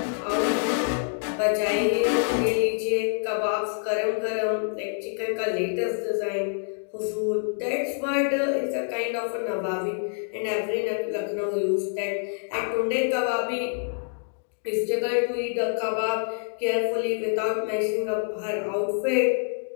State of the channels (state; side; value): silent; right; 61 dB below the other